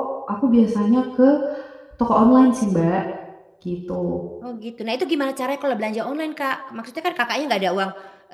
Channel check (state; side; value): identical; both; correlation 1.00